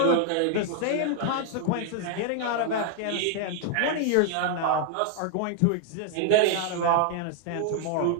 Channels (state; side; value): different; both; correlation 0.00